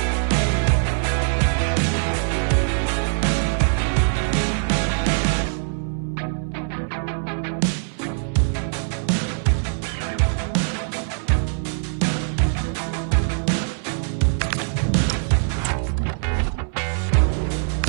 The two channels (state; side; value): silent; left; 64 dB below the other